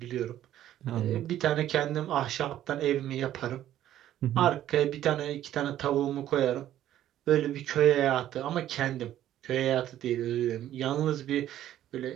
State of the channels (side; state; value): left; quieter; 12.3 dB